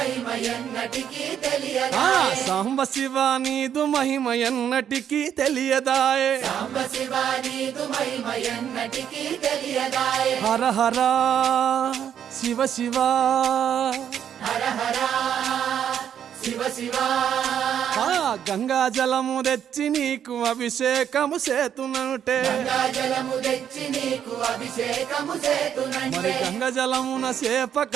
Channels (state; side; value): quieter; left; 9.1 dB